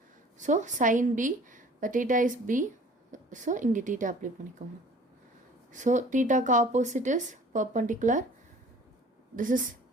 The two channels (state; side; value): normal; both; correlation 0.49